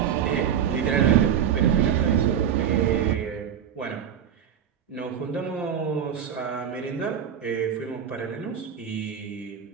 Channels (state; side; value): quieter; left; 8.7 dB